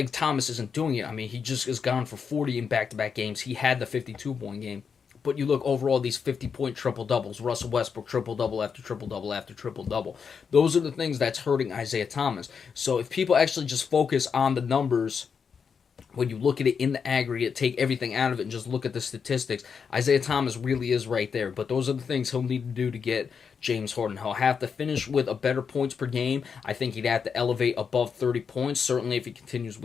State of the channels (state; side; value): quieter; right; 6.3 dB